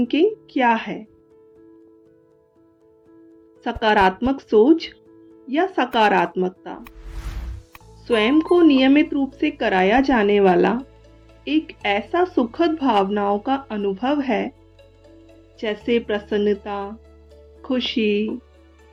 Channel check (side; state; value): both; identical; correlation 1.00